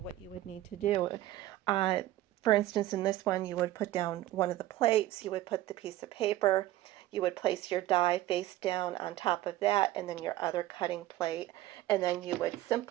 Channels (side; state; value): left; quieter; 15.3 dB